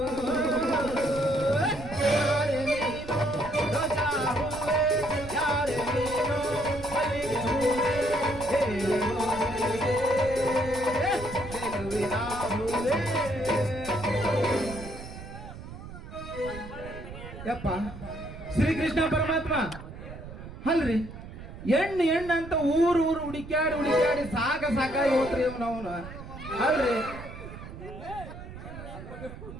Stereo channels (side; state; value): right; noise; rumble, 12 dB below the sound